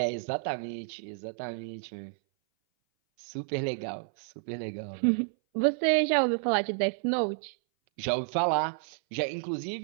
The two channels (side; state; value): left; silent; 58 dB below the other